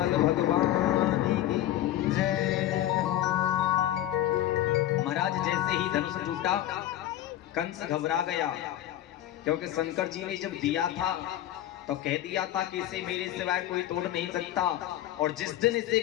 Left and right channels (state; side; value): quieter; right; 13.1 dB